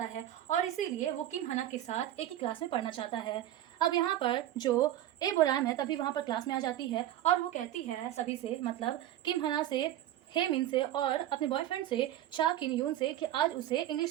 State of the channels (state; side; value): quieter; left; 12.9 dB